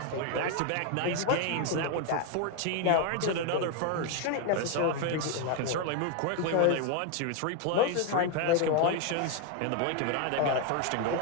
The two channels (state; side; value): different; both; correlation 0.01